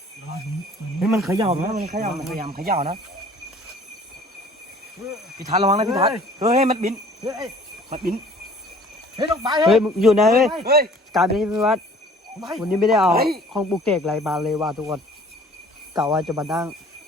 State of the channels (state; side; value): normal; both; correlation 0.51